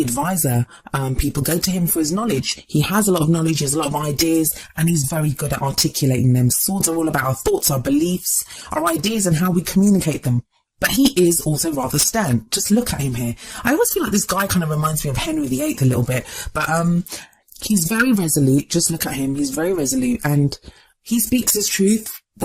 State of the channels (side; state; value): both; identical; correlation 1.00